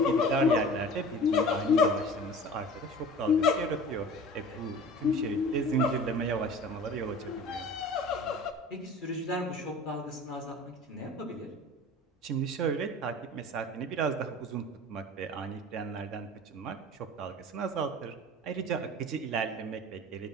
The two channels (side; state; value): both; normal; correlation 0.41